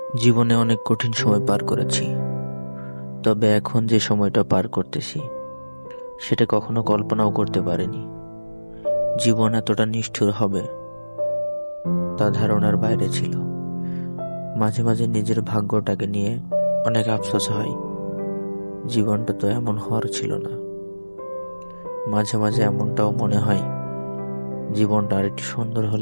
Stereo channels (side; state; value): both; inverted; correlation -1.00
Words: জীবনে অনেক কঠিন সময় পার করেছি, তবে এখন যে সময়টা পার করতেছি সেটা কখনো কল্পনাও করতে পারিনি। জীবন এতটা নিষ্ঠুর হবে তা ধারণার বাইরে ছিল। মাঝে মাঝে নিজের ভাগ্যটাকে নিয়ে অনেক আফসোস হয়, জীবনটা তো এমন হওয়ার ছিল না। মাঝে মাঝে এমনটাও মনে হয়, জীবনটা আর একটু সুন্দর